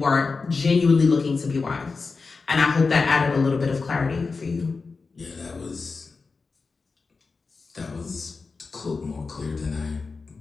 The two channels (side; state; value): right; quieter; 4.4 dB